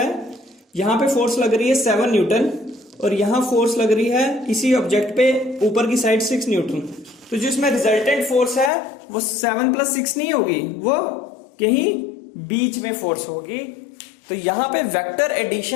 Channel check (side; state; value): right; drops out; at 8.7 s